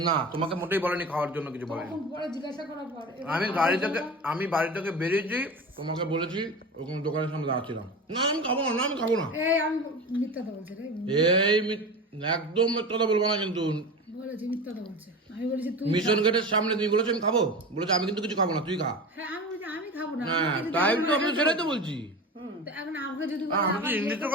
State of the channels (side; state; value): both; normal; correlation 0.30